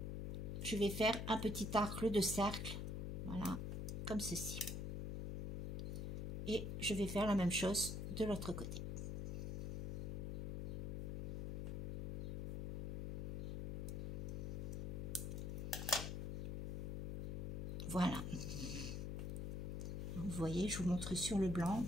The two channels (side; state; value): left; noise; hum, 2 dB below the sound